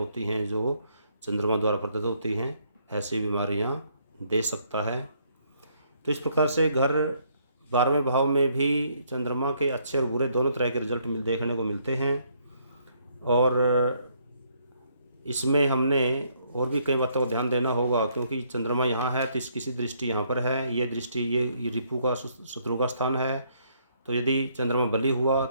हैं जो चंद्रमा द्वारा प्रदत्त होती हैं, ऐसी बीमारियाँ दे सकता है। तो इस प्रकार से घर 12वें भाव में भी चंद्रमा के अच्छे और बुरे दोनों तरह के रिजल्ट देखने को मिलते हैं। और इसमें हमने और भी कई बातों को ध्यान देना होगा, क्योंकि चंद्रमा यहाँ है तो इस किसी दृष्टि यहाँ पर है, ये दृष्टि ये रिपु का शत्रु का स्थान है। तो यदि चंद्रमा बली हुआ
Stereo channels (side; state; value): both; inverted; correlation -0.70